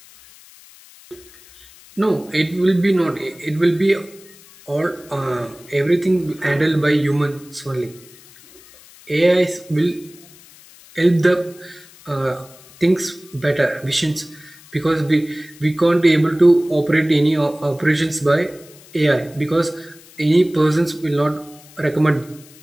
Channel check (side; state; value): left; noise; hiss, 23 dB below the sound